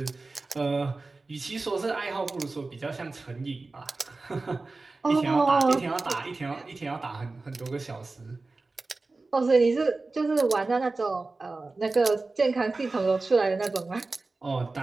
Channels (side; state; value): left; quieter; 3.5 dB